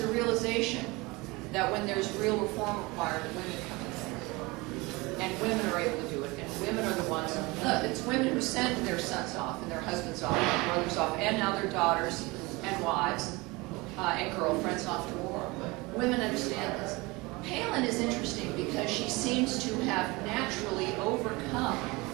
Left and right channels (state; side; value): quieter; left; 23.8 dB